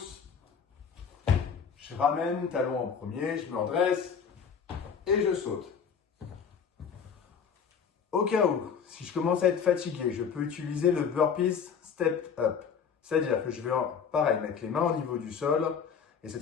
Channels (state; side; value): quieter; right; 6.8 dB